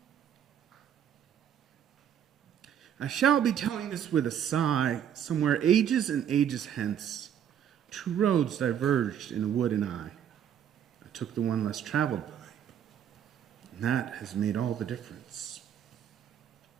I shall be telling this with a sigh. Somewhere ages and ages hence, two roads diverged in a wood, and I took the one less traveled by, and that has made all the difference.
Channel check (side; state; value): left; quieter; 9.3 dB